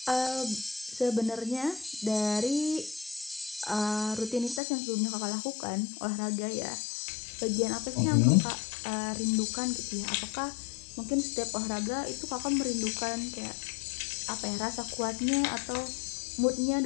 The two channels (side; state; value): right; drops out; at 4.6 s